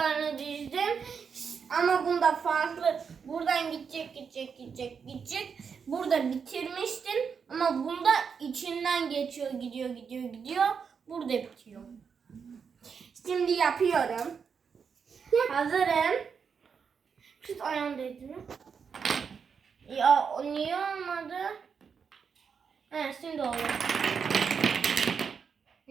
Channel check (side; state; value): left; quieter; 6.3 dB